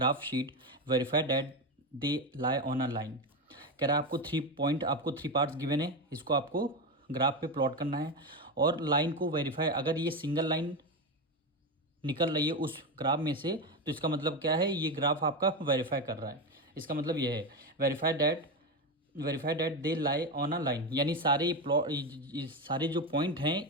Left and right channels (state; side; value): normal; both; correlation 0.15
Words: sheet, verify that they lie on a line. कह रहा है आपको 3 पॉइंट, आपको 3 पार्ट्स गिवन है, इसको आपको ग्राफ पे प्लॉट करना है और लाइन को वेरीफाई, अगर ये सिंगल लाइन निकल रही है उस ग्राफ में से तो इसका मतलब क्या है, ये ग्राफ आपका वेरीफाई कर रहा है। इसका मतलब ये है verify that they lie on a line, यानी सारे प्लॉट, सारे जो पॉइंट हैं